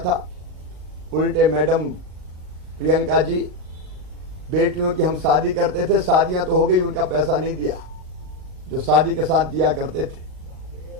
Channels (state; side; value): late; left; 39 ms